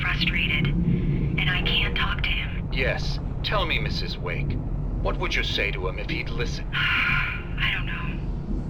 frustrated. And I can't talk to him. Yes. Tell me, Mrs. Wake, what would you say to him if he'd listen? I don't know.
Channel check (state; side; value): identical; both; correlation 1.00